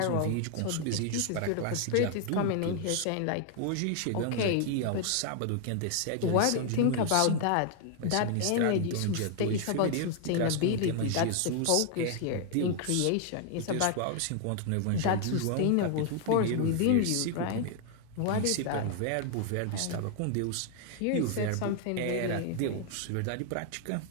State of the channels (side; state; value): both; different; correlation 0.00